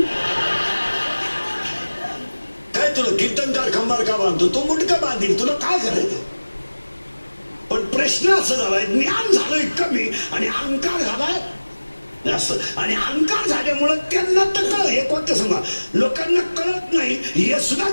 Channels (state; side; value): inverted; both; correlation -1.00